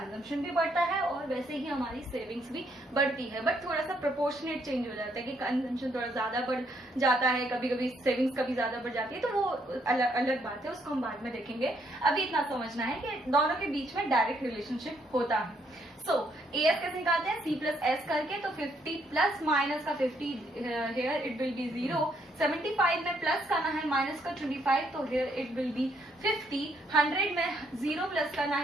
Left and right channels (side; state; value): both; normal; correlation 0.71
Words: भी बढ़ता है और वैसे ही हमारी सेविंग्स भी बढ़ती है। बट थोड़ा सा प्रोपोर्शनेट चेंज हो जाता है कि कंजम्पशन थोड़ा ज्यादा बढ़ जाता है, कभी कभी सेविंग्स कभी ज्यादा बढ़ जाती है, तो वो अलग अलग बात है, उसको हम बाद में देखेंगे। अभी इतना समझना है कि दोनों के बीच में डायरेक्ट रिलेशनशिप होता है। सो AS कैसे निकालते हैं? C प्लस एस करके। तो 50 प्लस माइनस का 50 हेयर इट विल बी 0। 75 में प्लस करना है माइनस का 25, तो हेयर इट विल बी 50। 100 में 0 प्लस करना